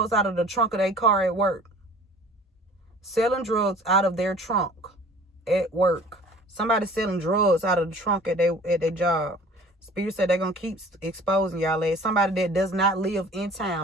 car at work. Selling drugs out of their trunk at work. Somebody selling drugs out of the trunk at their job. Spirit said they're going to keep exposing y'all as somebody that does not live in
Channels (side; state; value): both; normal; correlation 0.48